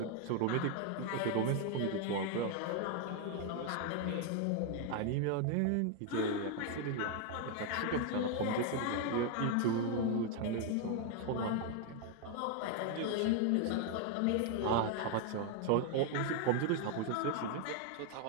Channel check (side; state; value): both; different; correlation 0.01